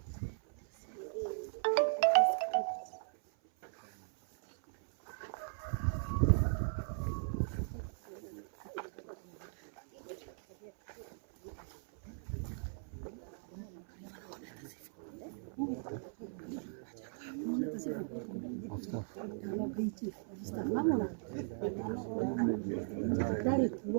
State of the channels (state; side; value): silent; left; 52 dB below the other